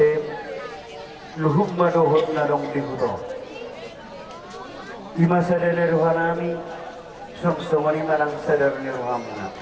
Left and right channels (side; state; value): both; identical; correlation 1.00